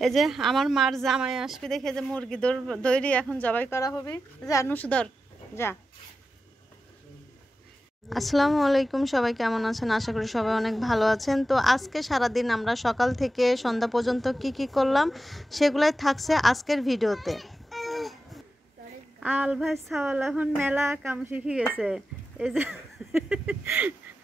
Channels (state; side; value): normal; both; correlation 0.91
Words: এই যে আমার মার জামাই আসবে দেখে যে মুরগি দইরি এখন জবাই করা হবে। যা নুসুধর যা। আসসালামু আলাইকুম, সবাই কেমন আছেন? আশা করি সবাই অনেক ভালো আছেন। তো আজকে সারাদিন আমরা সকাল থেকে সন্ধ্যা পর্যন্ত কি করলাম সেগুলাই থাকছে আজকের ভিডিওতে। আল ভাই সাওয়াল এখন মেলা কাম শিখে গেছে, এই যে